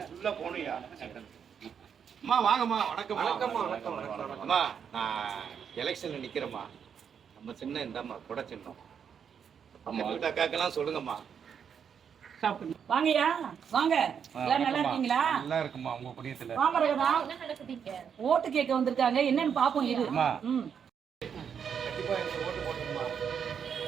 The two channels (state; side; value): quieter; left; 7.5 dB